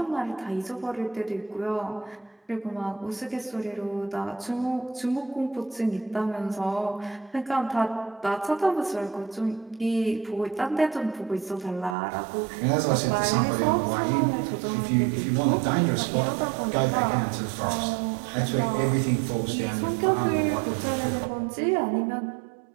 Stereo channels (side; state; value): left; drops out; at 12.0 s